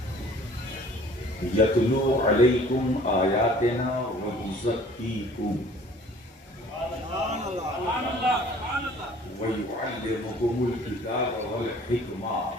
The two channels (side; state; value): both; normal; correlation 0.52